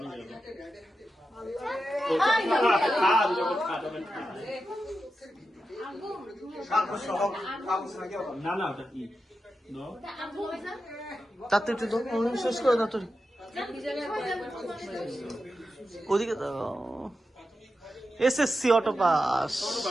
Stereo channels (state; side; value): normal; both; correlation 0.90